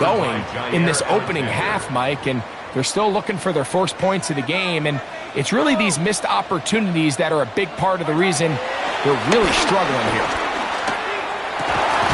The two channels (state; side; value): identical; both; correlation 1.00